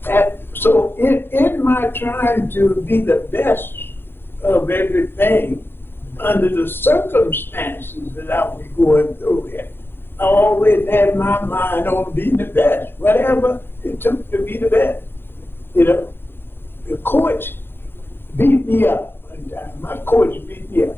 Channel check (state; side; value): late; right; 0.10 ms